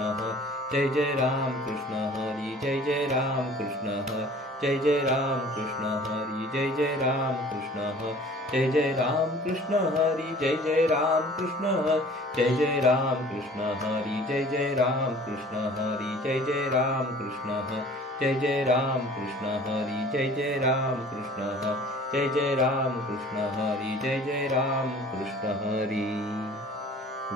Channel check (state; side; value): normal; both; correlation 0.48